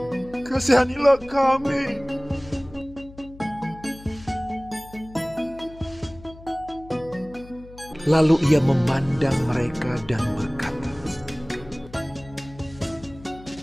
kasihanilah kami." Lalu ia memandang mereka dan berkata,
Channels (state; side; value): noise; left; hum, 19 dB below the sound